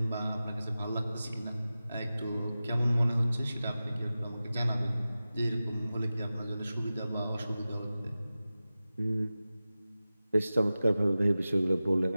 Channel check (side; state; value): both; inverted; correlation -0.95